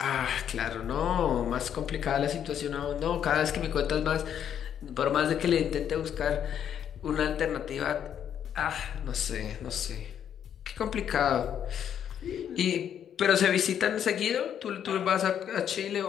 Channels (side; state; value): right; quieter; 9.1 dB